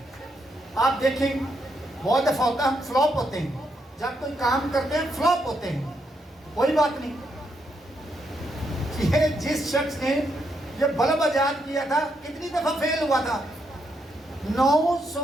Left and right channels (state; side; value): normal; both; correlation 0.79